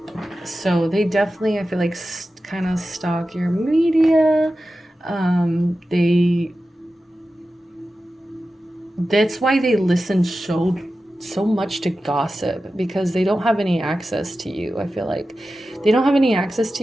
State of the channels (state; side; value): normal; both; correlation 0.93